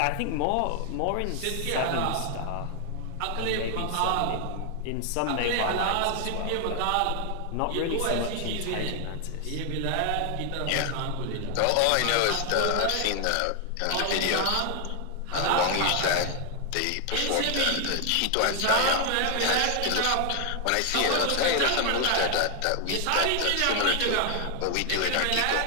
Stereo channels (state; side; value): different; both; correlation 0.00